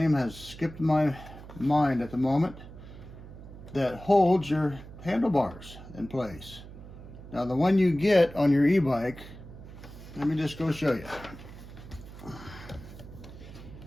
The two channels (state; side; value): noise; right; hum, 15 dB below the sound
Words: has skipped my mind at the moment, that holds your handlebars in place. Now the one you get on your e-bike, let me just go show you.